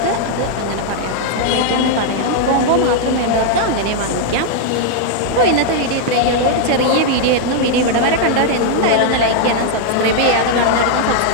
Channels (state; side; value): different; both; correlation 0.00